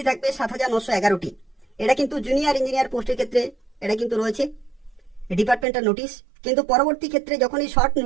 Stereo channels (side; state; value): left; drops out; at 5.7 s